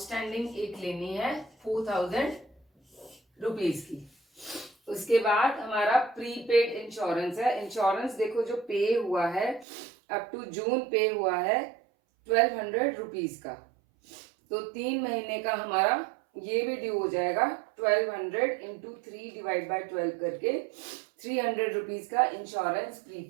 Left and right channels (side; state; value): left; drops out; at 9.7 s